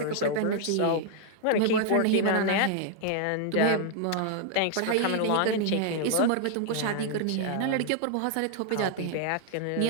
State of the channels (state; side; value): different; both; correlation 0.00